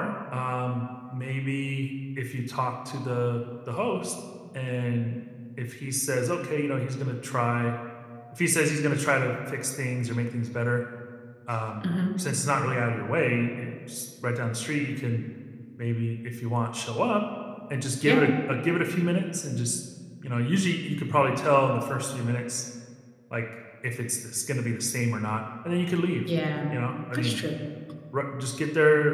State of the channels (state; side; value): identical; both; correlation 1.00